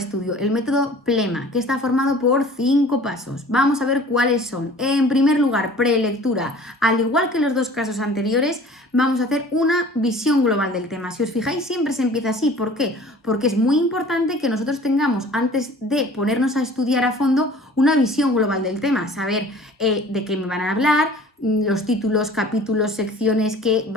el método PLEMA, que está formado por 5 pasos. Vamos a ver cuáles son. En primer lugar, prelectura. Al igual que los dos casos anteriores, vamos a hacer una visión global del tema. Si os fijáis, siempre se empieza así. ¿Por qué? Porque es muy importante que nosotros tengamos, antes de ponernos a estudiar a fondo, una visión global del tema. Saber de qué me van a hablar, los títulos, capítulos, secciones que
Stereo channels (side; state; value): both; normal; correlation 0.47